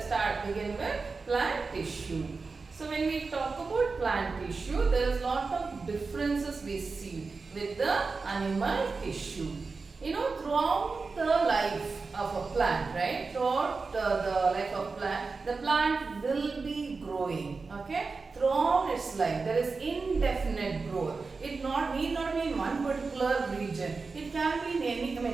begin with plant tissue. So when we talk about plant tissue, there is lot of differences we see with the animal tissue. You know, throughout the life of a plant, right? Throughout the life of plant, the plant will be growing, okay? Throughout its life, there is indefinite growth. It need not be in one particular region. It can be in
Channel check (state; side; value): quieter; left; 4.3 dB